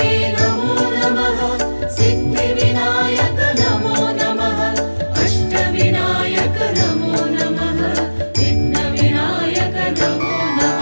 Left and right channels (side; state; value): both; inverted; correlation -1.00